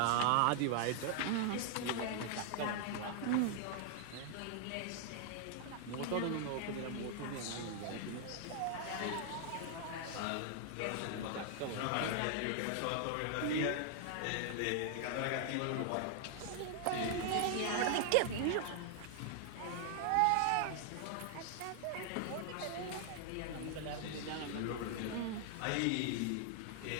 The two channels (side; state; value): both; different; correlation 0.00